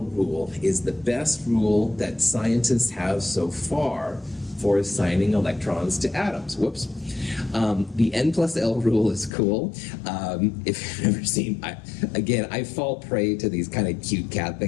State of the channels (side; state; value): right; drops out; at 9.3 s